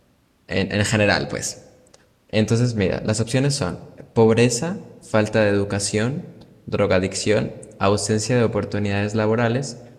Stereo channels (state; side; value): identical; both; correlation 1.00